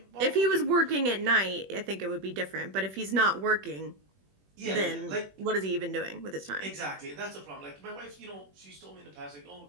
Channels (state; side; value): late; left; 21 ms